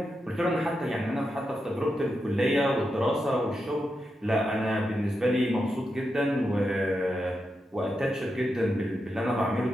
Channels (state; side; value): normal; both; correlation 0.86